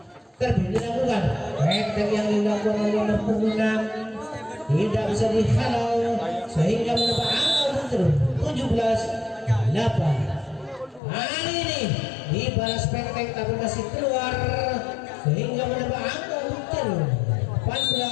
Terlebih dilakukan pendek yang dilakukan oleh punggung 6 tidak bisa dihalau sehingga menambah angka untuk terus 17-8. Kali ini dibalas pendek tapi masih keluar sehingga menambah angka untuk terus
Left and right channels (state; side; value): drops out; right; at 11.0 s